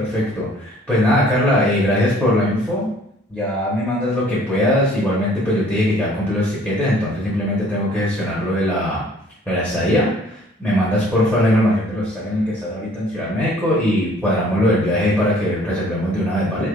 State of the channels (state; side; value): normal; both; correlation 0.56